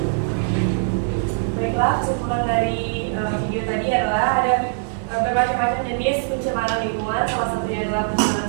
Baiklah, kesimpulan dari video tadi adalah ada bermacam-macam jenis pencemaran lingkungan. Salah satunya adalah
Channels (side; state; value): left; silent; digital silence